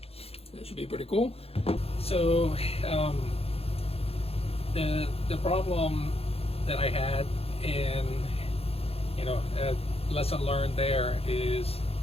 That should be pretty cool. So the problem that I had, and lesson learned there, is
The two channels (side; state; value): right; late; 0.29 ms